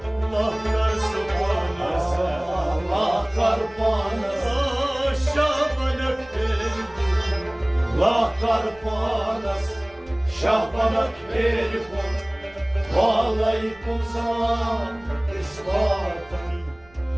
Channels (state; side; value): noise; right; rumble, 27 dB below the sound